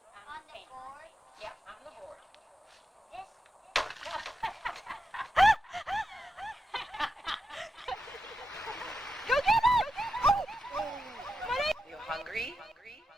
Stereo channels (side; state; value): both; normal; correlation 0.88